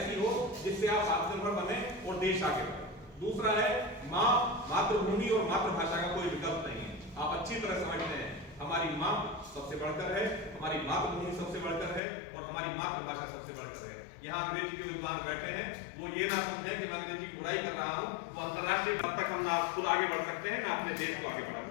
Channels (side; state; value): right; drops out; at 12.0 s